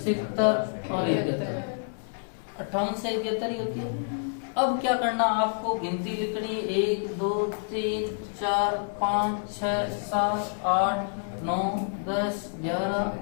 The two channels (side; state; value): right; silent; 59 dB below the other